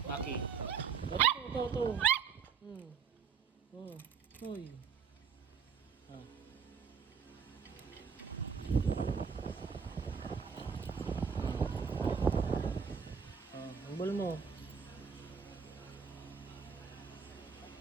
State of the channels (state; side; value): quieter; left; 6.4 dB